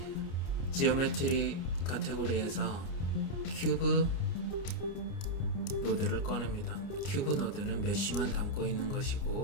지오메트리 카테고리에서 큐브 노드를 꺼냅니다. 큐브 노드는 메쉬만 담고 있는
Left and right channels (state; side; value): late; right; 29 ms